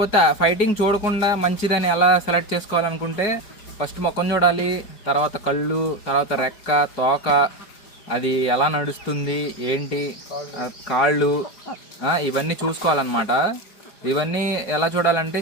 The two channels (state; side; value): late; right; 4.8 ms